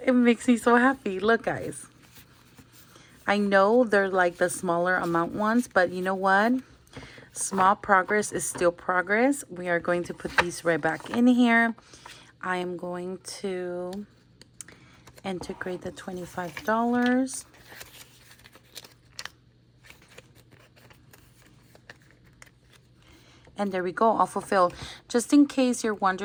it makes me so happy. Look, guys. I know they're like the smaller amount ones, but you know what? Small progress is still progress. We are going to put these right back in here. I am going to integrate the $25. And there we go, all fulfilled. Just in case you're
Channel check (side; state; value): both; identical; correlation 1.00